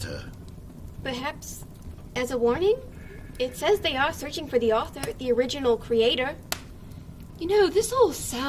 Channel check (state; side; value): identical; both; correlation 1.00